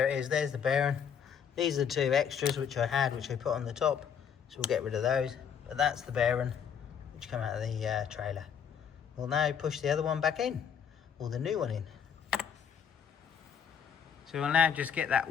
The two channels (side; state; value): right; quieter; 7.8 dB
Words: it is, there's the bearing. These are the two extras which I had, which I put on the top, so we'll get rid of those. But that's the bearing which come out of the trailer. We'll now push the other one back in, or the new one in. So we'll now just get that